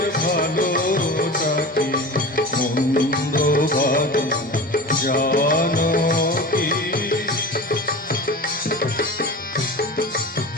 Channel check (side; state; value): both; normal; correlation 0.33